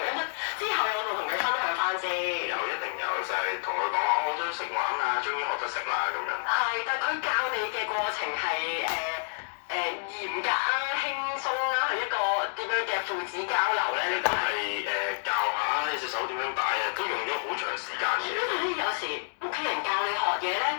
咁之後有冇同佢分享翻先？有，一定有，就係同佢講我都識玩啊，終於學得識啦咁樣。係，但係佢教你嘅過程係嚴格啊、輕鬆啦，係一個點樣嘅父子交流咧？呢個係教下你隻手點樣擺啊，都用咗好長時間嘅。因為咧，有時屋企人教你學嘢咧，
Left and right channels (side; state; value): right; silent; digital silence